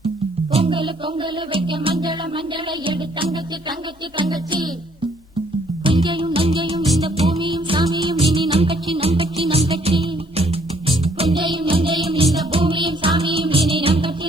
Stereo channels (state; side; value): normal; both; correlation 0.64